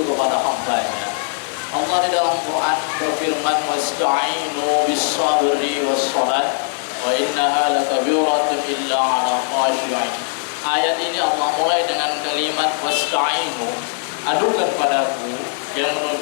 kepada hamba-Nya. Allah di dalam Quran berfirman, wasta'inu bis-sabri was-salat wa innaha lakabiratun illa 'ala khashi'in. Ayat ini Allah mulai dengan kalimat wasta'inu, adukan padaku, yang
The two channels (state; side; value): silent; right; digital silence